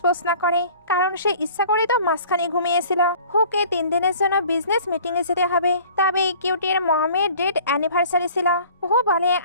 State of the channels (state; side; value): inverted; both; correlation -0.49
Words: না করে, কারণ সে ইচ্ছা করে তো মাঝখানে ঘুমিয়েছিল। হুকে 3 দিনের জন্য বিজনেস মিটিং এ যেতে হবে, তবে কিউটির মমের ডেট অ্যানিভার্সারি ছিল। হু বলে